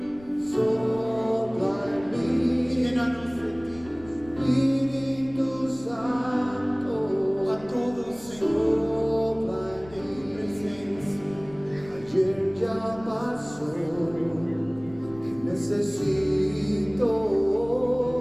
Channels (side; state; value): left; noise; rumble, 21 dB below the sound